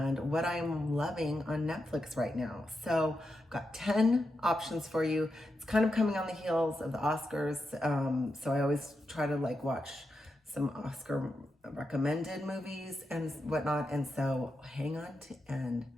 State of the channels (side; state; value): both; normal; correlation 0.87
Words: what I'm loving on Netflix right now. So I've got 10 options for you. It's kind of coming on the heels of the Oscars. So I always try to watch some Oscar recommended movies and whatnot. And so hang on to end.